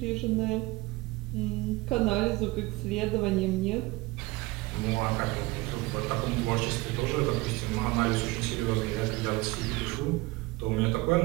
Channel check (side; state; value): left; quieter; 21.8 dB